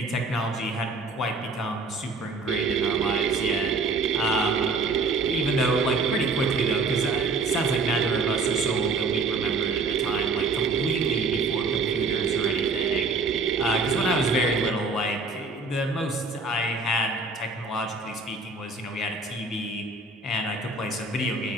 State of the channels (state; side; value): quieter; left; 3.8 dB